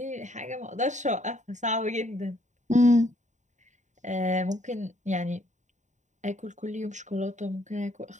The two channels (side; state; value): left; late; 0.35 ms